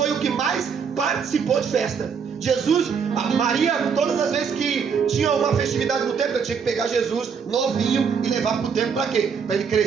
o que mais participou de festa. Jesus, a Maria, todas as vezes que tinha uma festividade no templo, eu tinha que pegar Jesus novinho e levar para o templo para quê? Para ele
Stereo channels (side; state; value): left; quieter; 6.4 dB